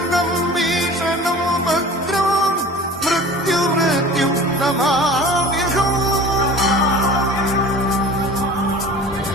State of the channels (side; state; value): both; normal; correlation 0.41